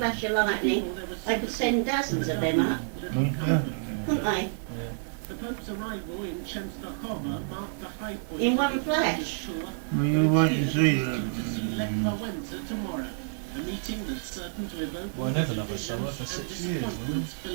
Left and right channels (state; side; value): silent; left; digital silence